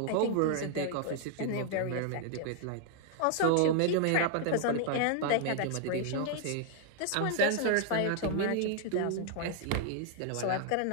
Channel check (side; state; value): both; different; correlation 0.00